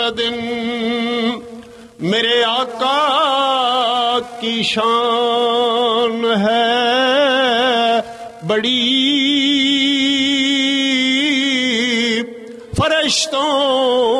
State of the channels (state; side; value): identical; both; correlation 1.00